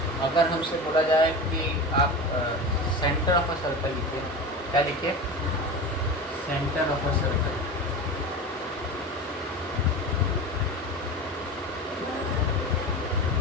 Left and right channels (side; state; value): both; normal; correlation 0.28